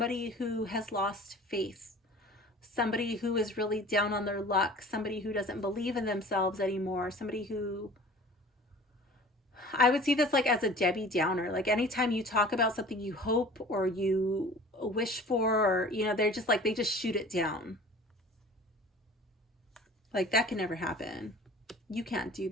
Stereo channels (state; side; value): normal; both; correlation 0.44